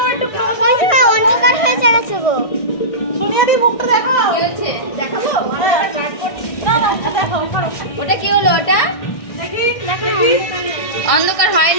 হয়েছে না, অন্ধকার হয়ে যাচ্ছে গো। সোনিয়াদি মুখটা দেখাও। কি হচ্ছে দেখাবো? ট্রাই করছি না না, দেখাও করো। ওটা কি হলো? ওটা দেখি দেখি অন্ধকার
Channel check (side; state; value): right; late; 1.6 ms